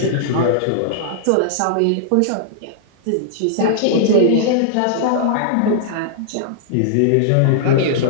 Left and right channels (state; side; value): different; both; correlation -0.01